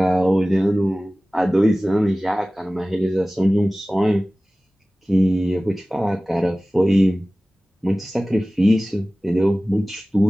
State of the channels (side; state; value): both; normal; correlation 0.97